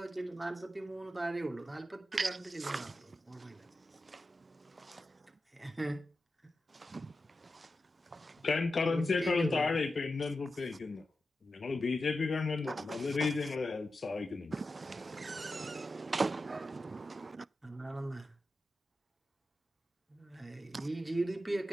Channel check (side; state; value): both; normal; correlation 0.91